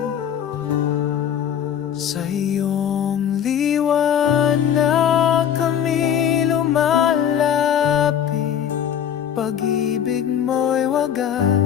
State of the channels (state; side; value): quieter; right; 9.1 dB